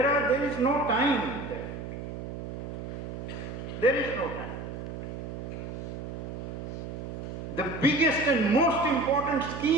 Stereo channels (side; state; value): right; noise; hum, 7 dB below the sound